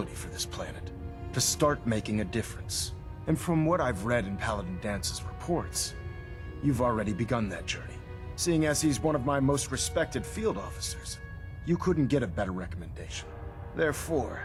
for this planet. To start making a difference. And from what I've read in Paladin Dance's reports, you've already begun that journey. Seeing as he's one of my most respected field officers, you couldn't get a better recommendation. Therefore,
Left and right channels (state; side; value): identical; both; correlation 1.00